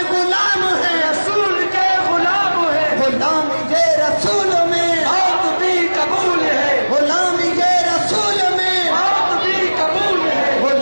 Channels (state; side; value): inverted; both; correlation -1.00